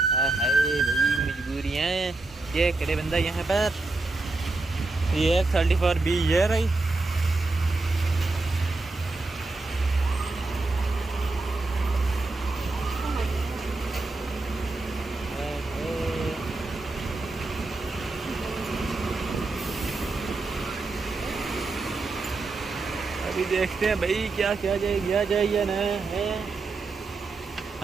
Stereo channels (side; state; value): left; quieter; 3.4 dB